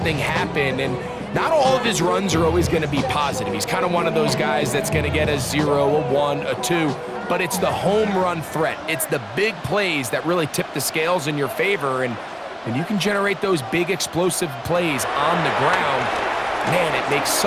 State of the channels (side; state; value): both; identical; correlation 1.00